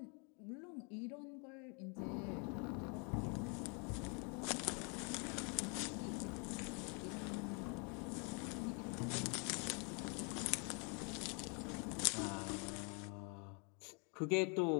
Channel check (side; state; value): right; quieter; 36.5 dB